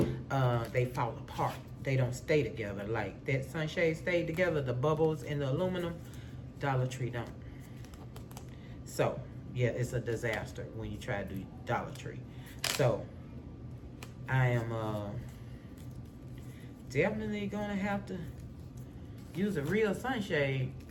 they fall apart. They don't stay together. Like that sunshade stayed together, the bubbles in the aluminum, Dollar Tree don't. So, yeah, it's a disaster when you try to do Dollar Tree. So, I am definitely gonna have to use a real sunshade.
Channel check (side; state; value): both; identical; correlation 1.00